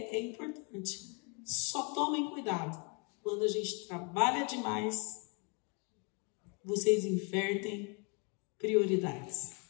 importante. Só tomem cuidado quando a gente trabalha demais, vocês invertem prioridades.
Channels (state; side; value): quieter; right; 34.4 dB